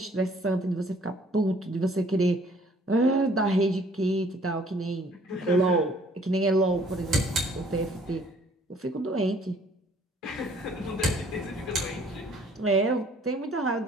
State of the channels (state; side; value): normal; both; correlation 0.59